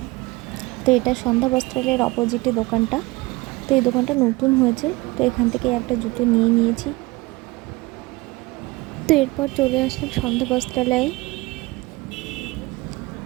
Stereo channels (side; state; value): left; quieter; 22.4 dB